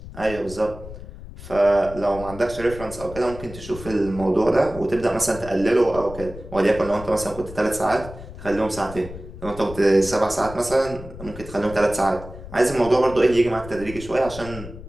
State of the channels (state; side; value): noise; left; rumble, 13 dB below the sound